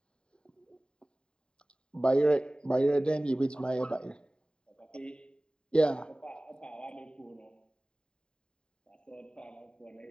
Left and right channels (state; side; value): late; right; 0.050 ms